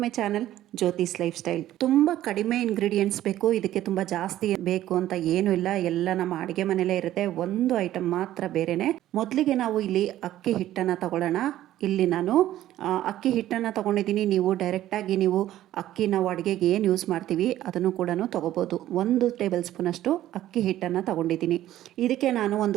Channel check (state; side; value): quieter; left; 13.4 dB